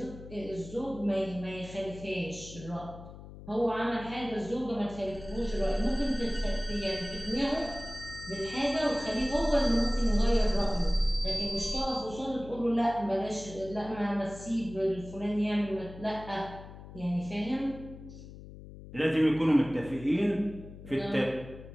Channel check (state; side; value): noise; left; hum, 15 dB below the sound